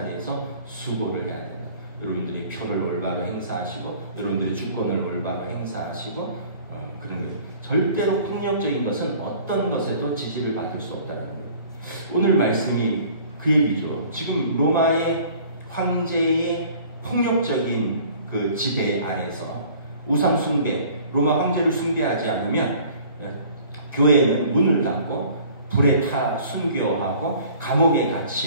수고를 해야 된다. 여러분들이 표를 올바로 행사하시고 여러분들의 주권을 올바로 행사하시고 그런 거예요. 절대로 폭력적인 것은 어떤 것에도 지지를 받을 수 없다는 거예요. 오늘 말씀이 그 얘기죠. 지금 로마의 황제의 폭력적인 그 지배 아래서 우상 숭배, 로마 황제를 숭배하지 않으면 교회는 문을 닫고 불에 타 순교하고 감옥에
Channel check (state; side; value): inverted; both; correlation -0.50